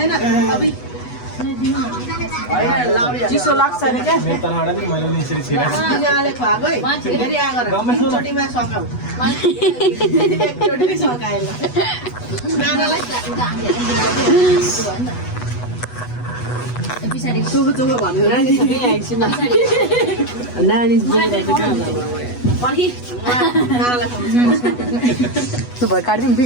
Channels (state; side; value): late; right; 8.2 ms